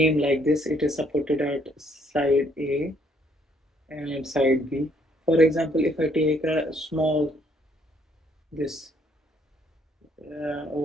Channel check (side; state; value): both; normal; correlation 0.67